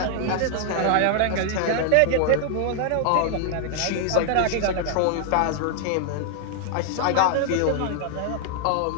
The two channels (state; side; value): different; both; correlation 0.00